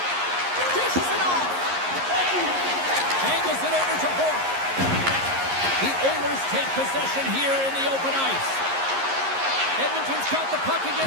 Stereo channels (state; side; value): late; left; 11 ms